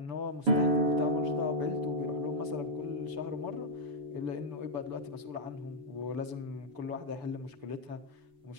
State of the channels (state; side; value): late; left; 6.9 ms